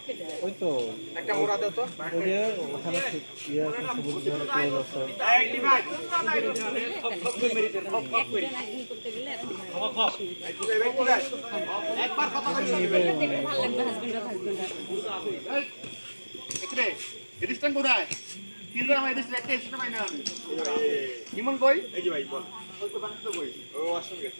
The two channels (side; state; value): both; inverted; correlation -1.00